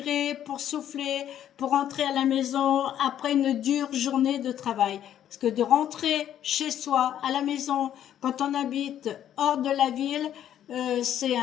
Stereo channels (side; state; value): right; quieter; 10.7 dB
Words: pour souffler, pour rentrer à la maison après une dure journée de travail. Parce que de rentrer chez soi, à la maison, quand on habite hors de la ville, c'est